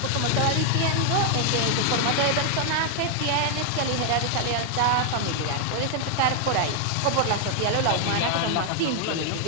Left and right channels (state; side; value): different; both; correlation 0.00